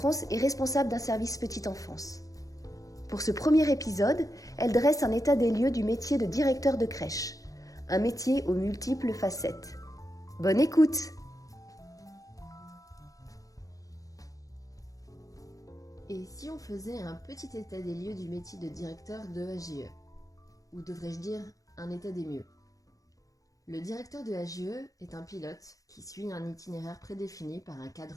est responsable d'un service petite enfance. Pour ce premier épisode, elle dresse un état des lieux du métier de directeur de crèche, un métier aux multiples facettes. Bonne écoute! Et si on faisait un petit état des lieux du métier de directeur de AGE? Ou devrais-je dire un état des mieux? Le directeur de AGE est un pilote qui suit un itinéraire prédéfini par un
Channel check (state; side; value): late; right; 0.17 ms